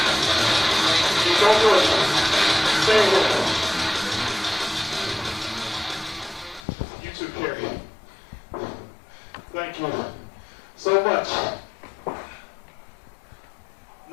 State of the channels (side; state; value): right; drops out; at 6.7 s